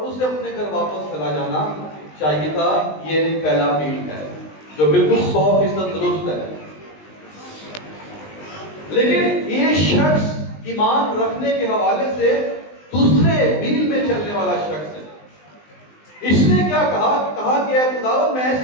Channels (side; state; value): right; late; 20 ms